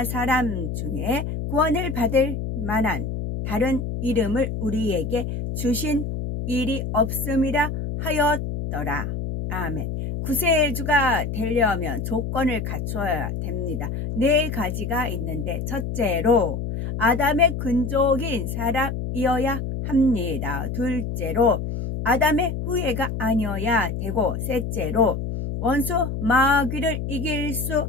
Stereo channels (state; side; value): noise; left; hum, 4 dB below the sound